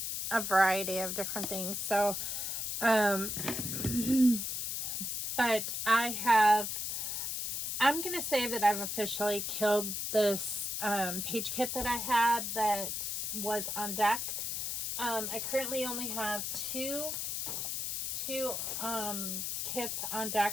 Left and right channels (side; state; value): left; noise; hiss, 2 dB below the sound